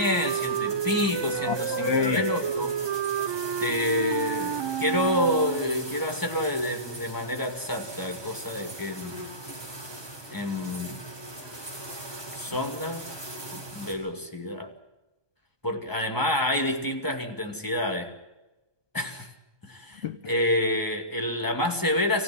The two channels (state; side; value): late; left; 1.2 ms